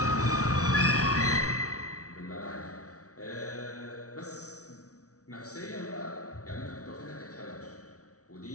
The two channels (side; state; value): right; late; 0.66 ms